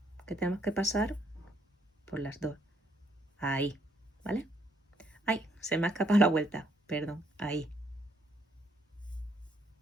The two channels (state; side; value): normal; both; correlation 0.69